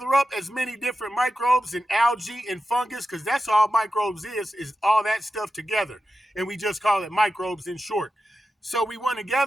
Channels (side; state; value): both; normal; correlation 0.91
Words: up as many different microbes and algae and fungus, because that's all microbes is all that stuff together. And we just call it microbes in short. So we want to